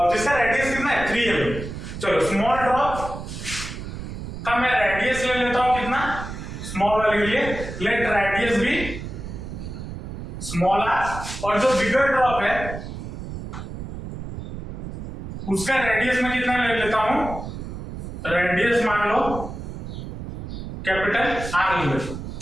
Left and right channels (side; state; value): right; noise; rumble, 8 dB below the sound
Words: जिसका रेडियस कितना है 3 mm। चलो स्मॉल ड्रॉप का मैं रेडियस ले लेता हूं, कितना स्मॉल वाले के लिए, लेट रेडियस भी स्मॉल आर, और जो बिगर ड्रॉप है उसका रेडियस मैं कितना ले लेता हूं, रेडियस मान लो कैपिटल आर ले लेता हूं।